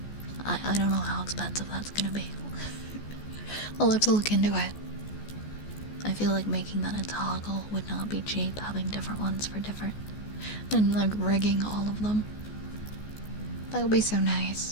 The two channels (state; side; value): late; right; 14 ms